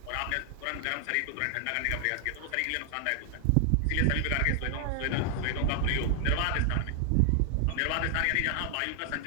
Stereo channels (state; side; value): different; both; correlation 0.00